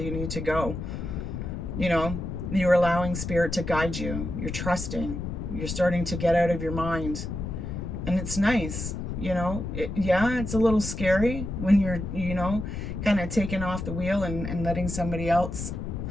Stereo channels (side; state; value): left; noise; rumble, 5 dB below the sound